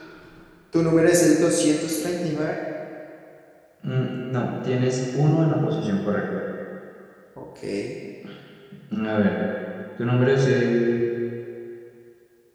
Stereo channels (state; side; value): identical; both; correlation 1.00